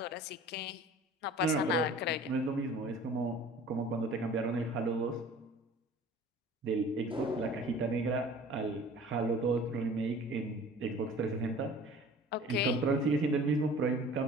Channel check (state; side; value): normal; both; correlation 0.45